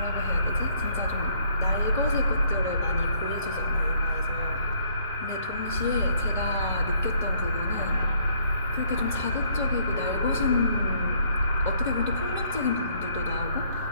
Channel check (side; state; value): both; inverted; correlation -0.65